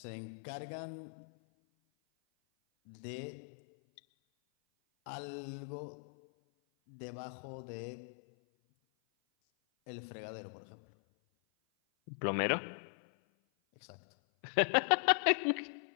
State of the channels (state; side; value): silent; right; 52 dB below the other